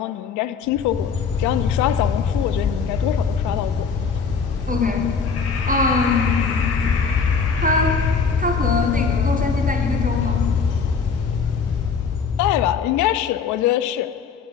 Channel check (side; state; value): right; quieter; 5.8 dB